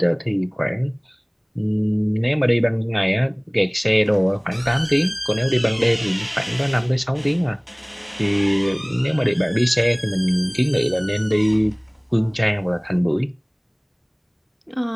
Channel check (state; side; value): identical; both; correlation 1.00